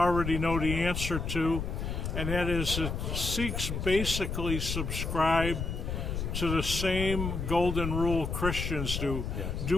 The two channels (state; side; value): noise; left; rumble, 3 dB below the sound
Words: know the answer to, and that is that Sikhs basically subscribe to the same golden rule Christians do? Yes.